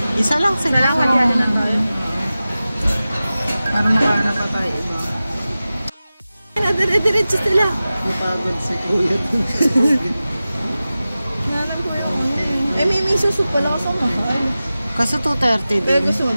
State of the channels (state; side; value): inverted; both; correlation -0.95